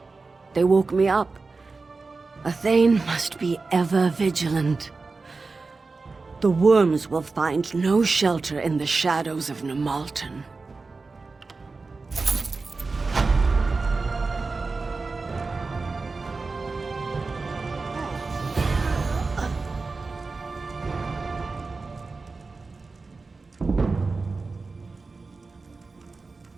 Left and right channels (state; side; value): quieter; left; 4.0 dB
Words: They woke me up. A Thane must be ever vigilant. The worms will find no shelter in the shadows of Nimalten.